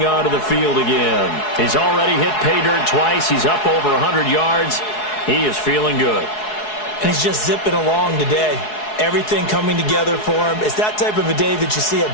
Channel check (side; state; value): right; late; 4.7 ms